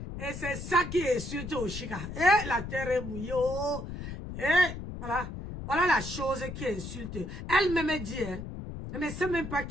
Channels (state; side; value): noise; left; rumble, 8 dB below the sound